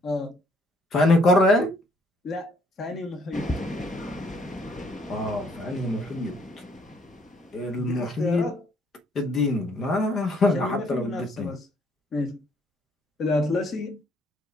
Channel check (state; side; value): normal; both; correlation 0.65